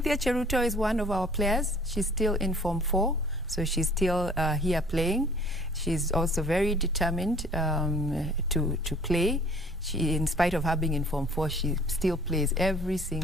Cheruto is one of our players. She's still in Form 4, so she's still here playing. She's also very determined to play. She, in spite of her being in Form 4, she still plays every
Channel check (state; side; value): normal; both; correlation 0.53